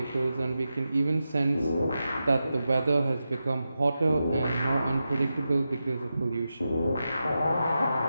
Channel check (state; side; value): inverted; both; correlation -0.90